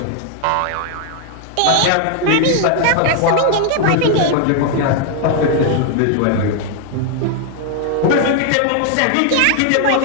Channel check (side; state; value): both; different; correlation 0.00